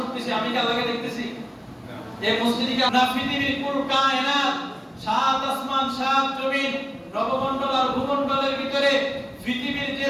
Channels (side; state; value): both; identical; correlation 1.00